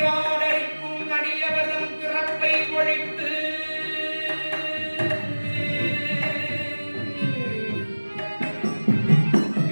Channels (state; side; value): inverted; both; correlation -1.00